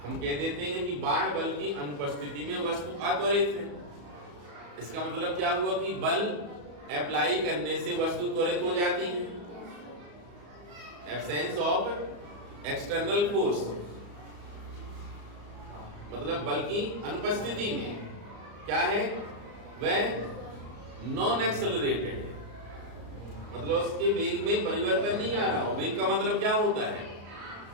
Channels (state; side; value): late; left; 34 ms